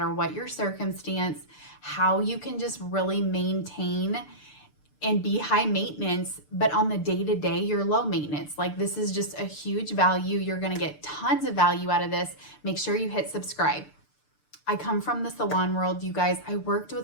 what your circumstance, how you can just really maintain and be high maintenance, but on the day-to-day, you're low maintenance. Like, this is just a huge value. You're going to get tons of value out of this. Make sure you hit subscribe. I come from the salon world, you guys. I worked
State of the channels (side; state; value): right; late; 6.7 ms